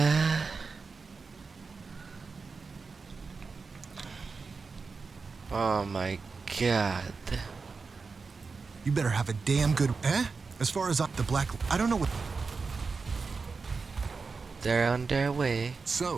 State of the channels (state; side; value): quieter; left; 4.6 dB